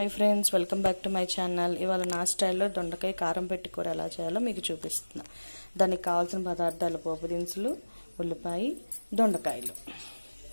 friends, welcome back to my channel. ఇవాళ నా స్టైల్లో దొండకాయ కారం పెట్టి కూర ఎలా చేయాలో మీకు చూపిస్తున్నా. దానికి కావాల్సిన పదార్థాలు: పోపు దినుసులు, ఉల్లిపాయ, దొండకాయలు.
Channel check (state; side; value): inverted; both; correlation -1.00